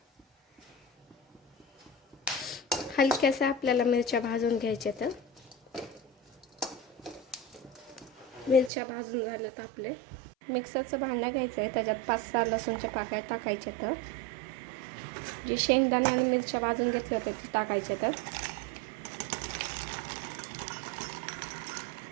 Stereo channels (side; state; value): left; drops out; at 8.7 s